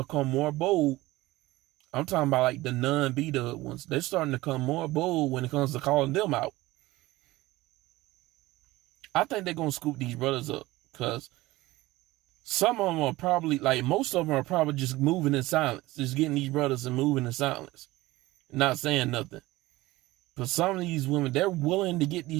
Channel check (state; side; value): quieter; left; 18.8 dB